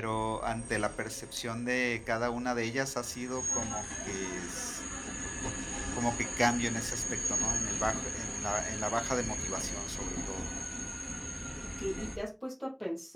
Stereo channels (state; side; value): identical; both; correlation 1.00